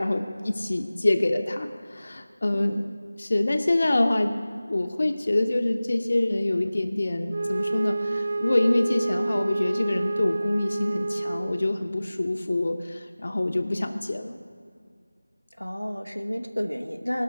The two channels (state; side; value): inverted; both; correlation -0.98